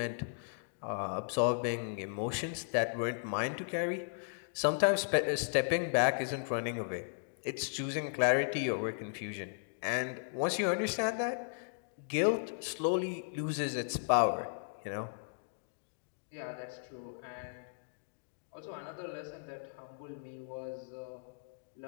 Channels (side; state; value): right; silent; digital silence